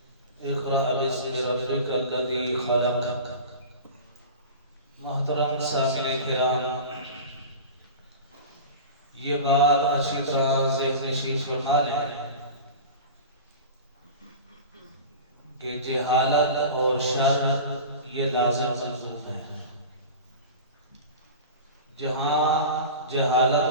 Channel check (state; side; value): inverted; both; correlation -0.33